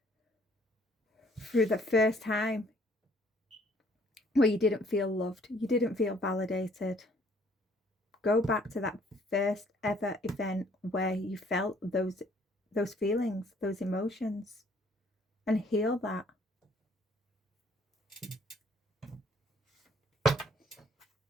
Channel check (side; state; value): both; normal; correlation 0.61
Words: through the first time where you didn't feel loved, you didn't feel validated. Go back to that first ever event where you felt those feelings, those emotions, and heal that.